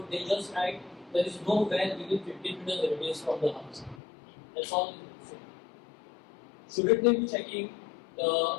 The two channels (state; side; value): drops out; right; at 4.0 s